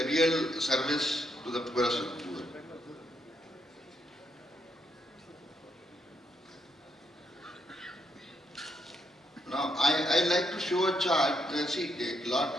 real service to the poorest of the poor. Now, I like to show a chart.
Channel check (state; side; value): normal; both; correlation 0.77